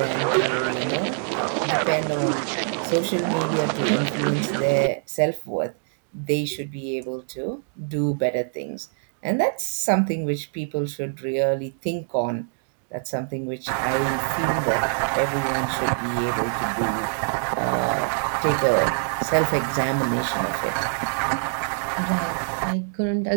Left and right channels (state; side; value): silent; left; digital silence